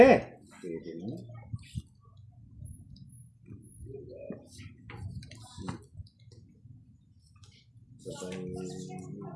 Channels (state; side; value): identical; both; correlation 1.00